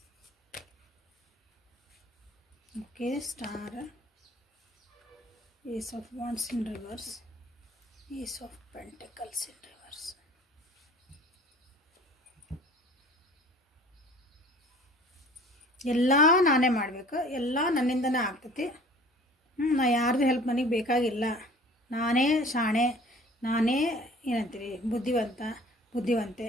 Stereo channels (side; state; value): both; normal; correlation 0.48